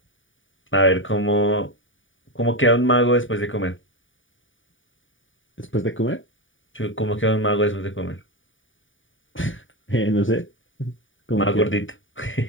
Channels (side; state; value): right; late; 0.57 ms